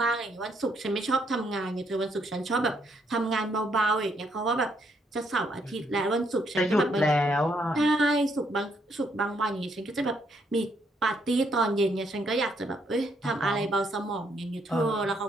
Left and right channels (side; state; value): both; normal; correlation 0.73